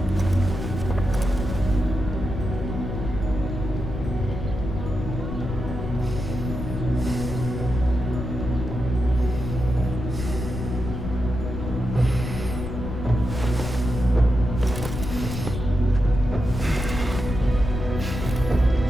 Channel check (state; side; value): noise; left; rumble, 5 dB below the sound